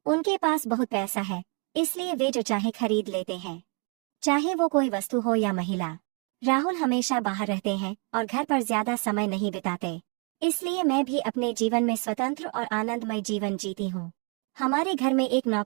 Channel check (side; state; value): left; quieter; 35.4 dB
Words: उनके पास बहुत पैसा है, इसलिए वे जो चाहे खरीद लेते हैं, चाहे वो कोई वस्तु हो या महिला। राहुल हमेशा बाहर रहते हैं और घर पर ज्यादा समय नहीं बिताते, इसलिए मैं भी अपने जीवन में स्वतंत्र और आनंदमय जीवन जीती हूँ। हमारे घर में एक